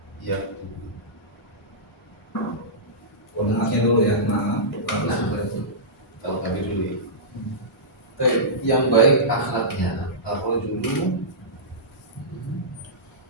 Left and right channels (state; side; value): normal; both; correlation -0.17